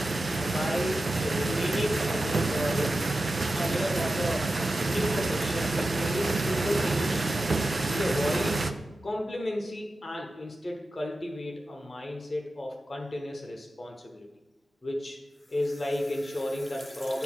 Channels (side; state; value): both; normal; correlation 0.93